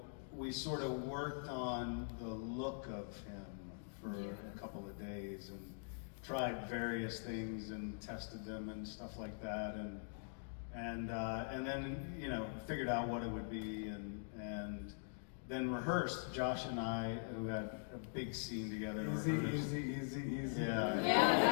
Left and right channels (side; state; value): right; silent; digital silence